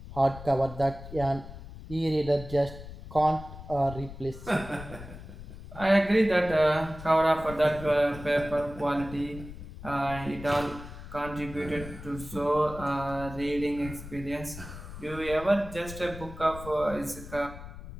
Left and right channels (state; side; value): noise; left; rumble, 13 dB below the sound